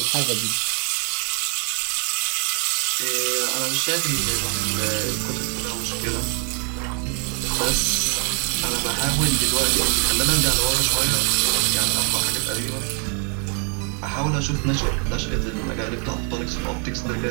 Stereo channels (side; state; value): left; quieter; 39.2 dB